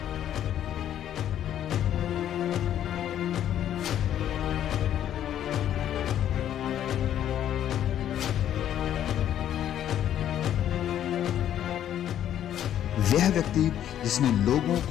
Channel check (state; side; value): quieter; right; 10.8 dB